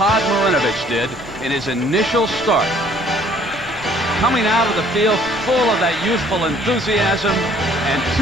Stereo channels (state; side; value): noise; left; rumble, 19 dB below the sound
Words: Marinovich did in his initial start. Coming out of the field full of that youthful enthusiasm and